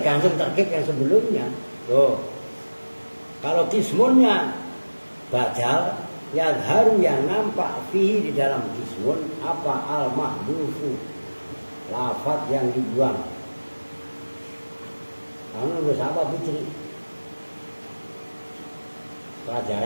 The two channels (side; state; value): both; inverted; correlation -1.00